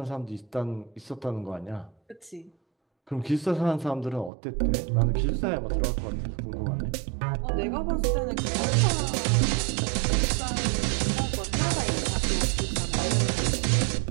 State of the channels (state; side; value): drops out; left; at 4.3 s